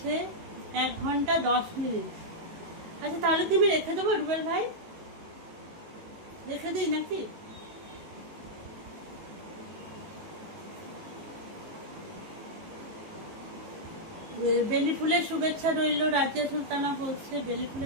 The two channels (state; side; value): late; left; 18 ms